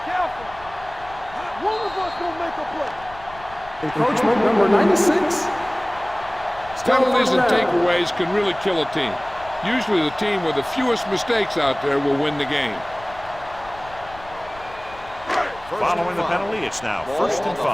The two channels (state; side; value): noise; left; rumble, 20 dB below the sound